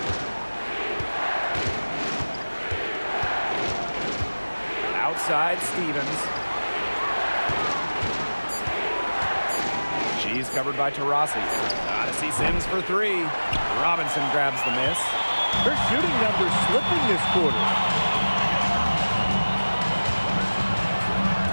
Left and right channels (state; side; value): inverted; both; correlation -1.00